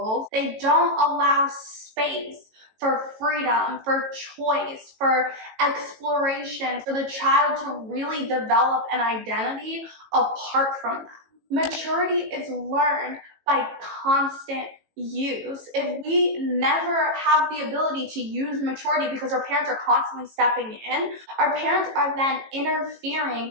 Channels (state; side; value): late; left; 18 ms